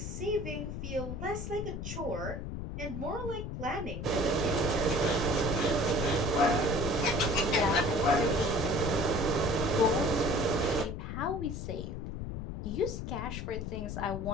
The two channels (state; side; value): noise; left; rumble, 6 dB below the sound